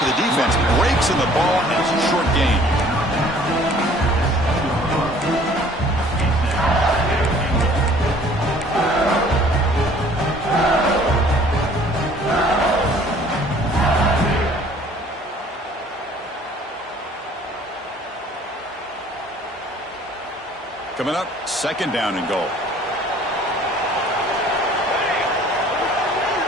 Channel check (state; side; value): normal; both; correlation 0.54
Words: the defense breaks in the ball, and it's a short gain. Coming up, second down and goal.